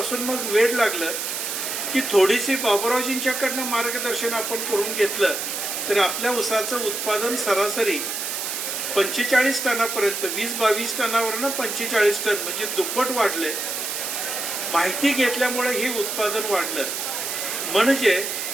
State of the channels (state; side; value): noise; right; hiss, 3 dB below the sound